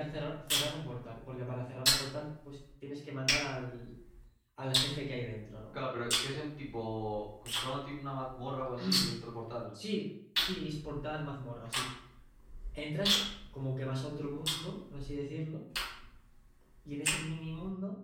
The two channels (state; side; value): identical; both; correlation 1.00